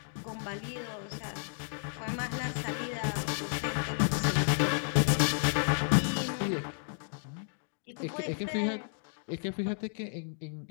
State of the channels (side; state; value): right; silent; digital silence